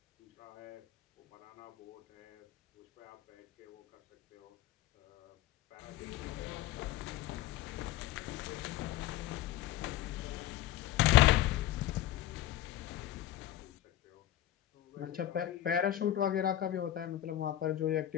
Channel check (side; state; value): right; quieter; 13.1 dB